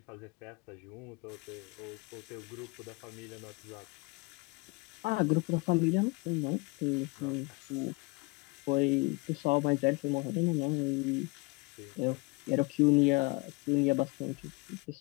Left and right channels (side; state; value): right; quieter; 27.2 dB